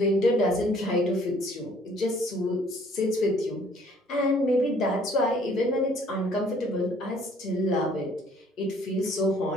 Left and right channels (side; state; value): both; normal; correlation 0.59